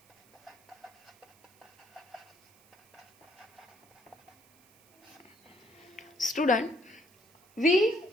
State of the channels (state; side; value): noise; right; hiss, 29 dB below the sound